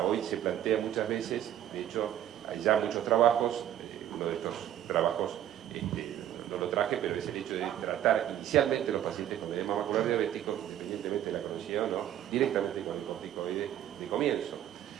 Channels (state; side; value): quieter; left; 11.4 dB